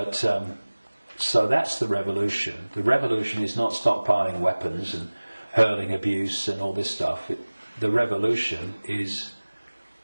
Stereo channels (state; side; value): inverted; both; correlation -1.00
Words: so that's the revolution. The revolution is not stockpiling weapons and hurling abuse and all this stuff. The revolution is